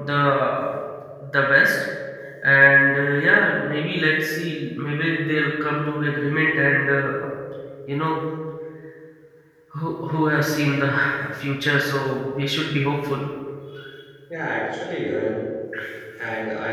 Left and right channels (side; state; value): both; identical; correlation 1.00